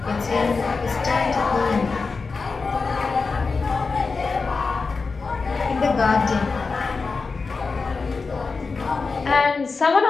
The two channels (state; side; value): quieter; right; 4.4 dB